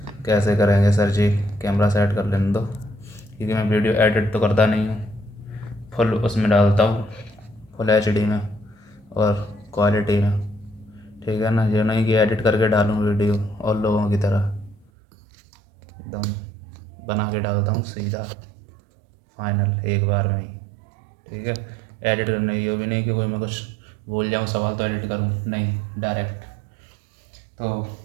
कैसे करेंगे। सर जी कैमरा सेट कर लेने दो, क्योंकि मैं वीडियो एडिट तो करता नहीं हूँ, फुल उसमें डालता हूँ, फुल HD में और क्वालिटी में। ठीक है ना, ये नहीं कि एडिट करके डालूँ वीडियो और लोगों की तरह एकदम बना के डालता हूँ सीधा फाइनल एक बार में ही। ठीक है, एडिट करना ये भी नहीं कि कोई मैं कुछ बोल जाऊँ सवाल तो एडिट करूँ, नहीं, डायरेक्ट। तो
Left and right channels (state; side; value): drops out; left; at 14.9 s